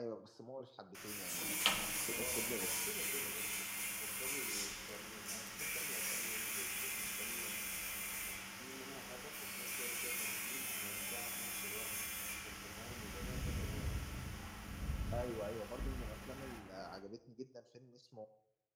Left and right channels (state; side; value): identical; both; correlation 1.00